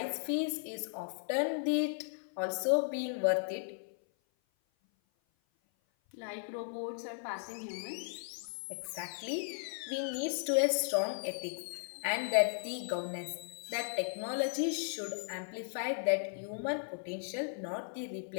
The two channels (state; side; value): silent; right; 54 dB below the other